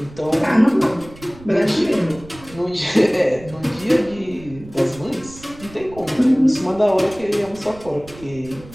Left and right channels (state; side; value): noise; right; rumble, 19 dB below the sound